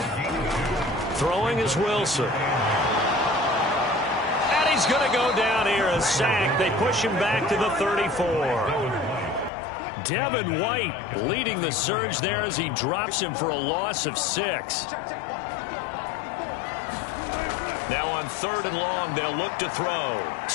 Throwing is Wilson. He's going to go down here, a sack. They push him back to the 34. Devin White leading the surge there as he drops him for a loss of 6. Now on 3rd and long, they'll look to throw.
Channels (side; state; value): right; drops out; at 9.5 s